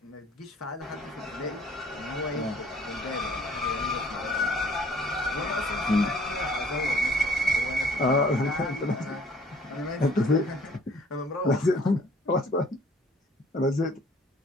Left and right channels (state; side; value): normal; both; correlation 0.56